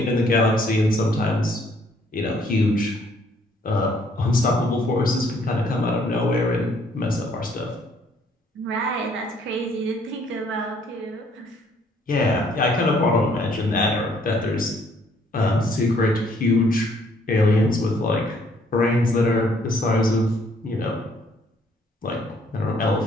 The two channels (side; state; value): both; normal; correlation 0.64